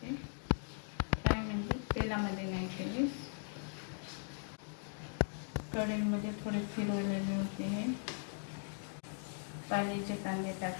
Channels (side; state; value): right; silent; 52 dB below the other